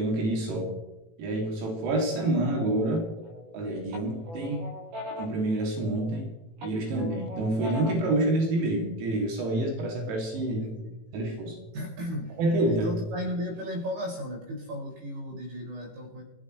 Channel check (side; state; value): left; late; 18 ms